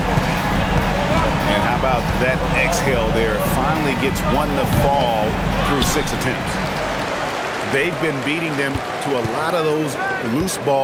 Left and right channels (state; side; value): identical; both; correlation 1.00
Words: And how about that exhale there? Finally gets one to fall through 6 attempts. They've been beating them to a lot of those loose